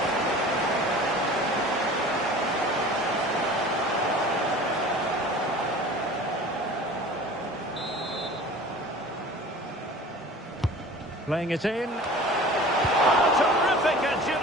Playing it in. Oh, terrific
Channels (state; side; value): normal; both; correlation 0.42